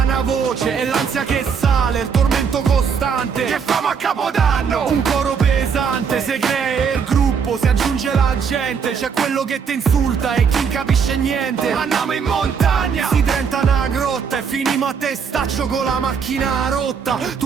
voce. E l'ansia che sale, il tormento costante. Che famo a Capodanno? Un coro pesante, se crea il gruppo, si aggiunge la gente. C'è quello che ti insulta e chi non capisce niente. Andiamo in montagna! Si diventa una grotta e finimo a testaccio con la macchina rotta.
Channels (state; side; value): quieter; left; 6.4 dB